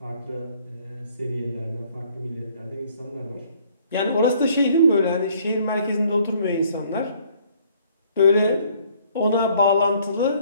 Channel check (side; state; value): both; inverted; correlation -0.62